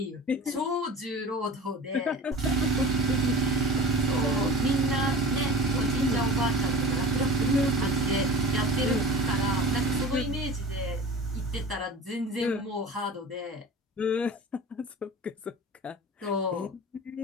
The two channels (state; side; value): normal; both; correlation 0.35